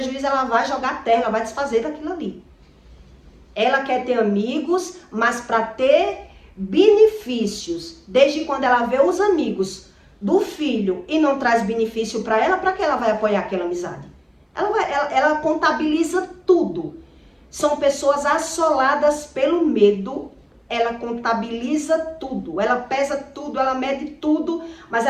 ela vai jogar terra, ela vai desfazer daquilo ali. Ela quer ter amigos, mas para ter benefícios, desde quando ela vê os amigos do filho e não traz benefício para ela, para que ela vai apoiar aquela amizade? Ela contabiliza tudo. São pessoas assoladas pelo medo. Ela contabiliza tudo. Ela pesa tudo, ela mede tudo. Mas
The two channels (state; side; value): identical; both; correlation 1.00